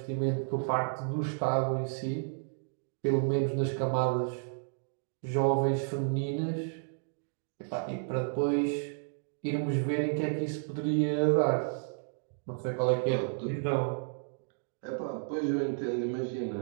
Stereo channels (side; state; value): left; silent; digital silence